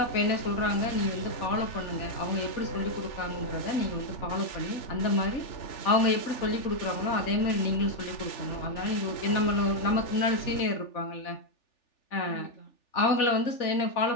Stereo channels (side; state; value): right; late; 3.4 ms